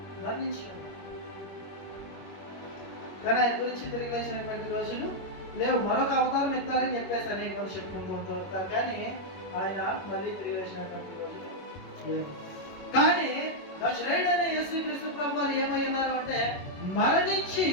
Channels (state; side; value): late; right; 21 ms